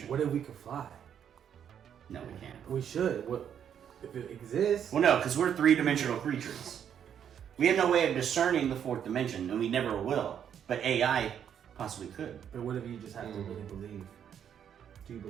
What if we could fly? No, we can't. We should. What if it exists? Well, no, because we're 3-dimensional creatures. We have no way of discerning the 4th dimension, and we never will. But AI possibly could. But what if you just have to really believe? Do you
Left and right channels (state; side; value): quieter; left; 8.8 dB